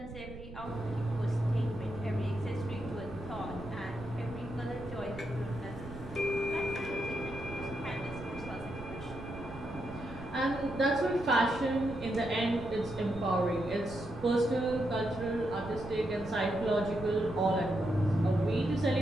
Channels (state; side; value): noise; right; rumble, 13 dB below the sound